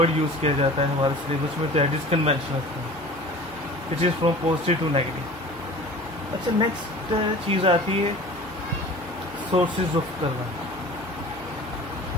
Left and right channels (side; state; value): both; normal; correlation 0.41